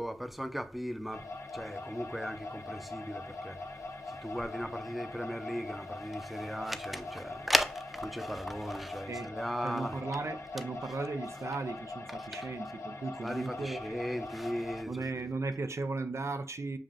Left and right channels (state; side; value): normal; both; correlation 0.90